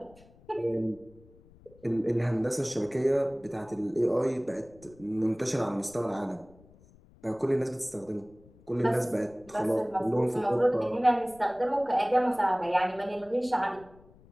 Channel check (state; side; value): noise; left; rumble, 26 dB below the sound